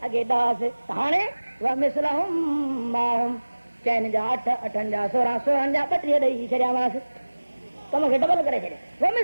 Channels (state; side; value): inverted; both; correlation -1.00